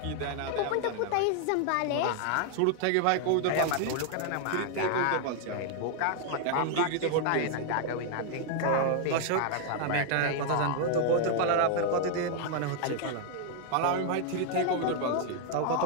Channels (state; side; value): different; both; correlation 0.00